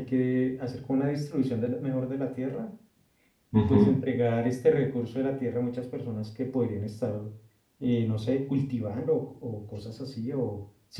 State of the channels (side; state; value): both; identical; correlation 1.00